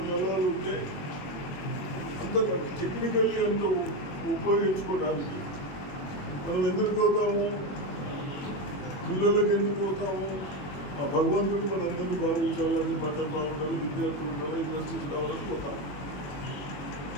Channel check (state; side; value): late; right; 21 ms